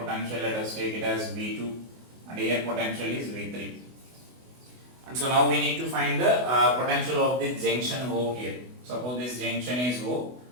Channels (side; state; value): left; late; 24 ms